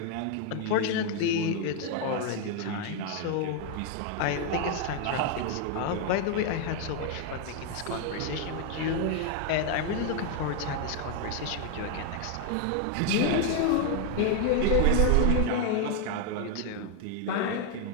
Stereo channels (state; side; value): different; both; correlation 0.00